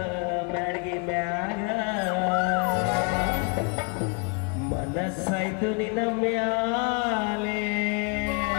ಮ್ಯಾಳ್ಗಿ ಮ್ಯಾಗ ಮನಸ್ಸಾಯ್ತು ನಿನ್ನ ಮ್ಯಾಲೆ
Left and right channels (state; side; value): quieter; right; 35.5 dB